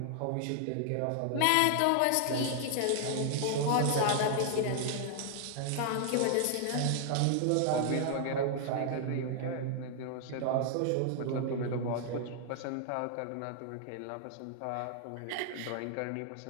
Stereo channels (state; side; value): different; both; correlation 0.00